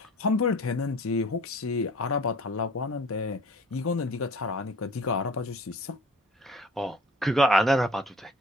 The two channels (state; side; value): normal; both; correlation 0.46